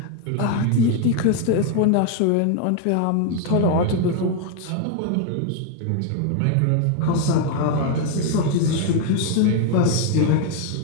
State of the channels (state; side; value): different; both; correlation 0.01